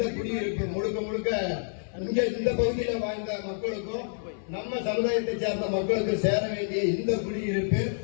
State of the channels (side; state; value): right; silent; digital silence